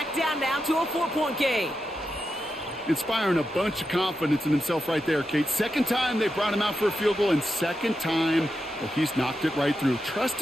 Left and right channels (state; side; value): normal; both; correlation 0.88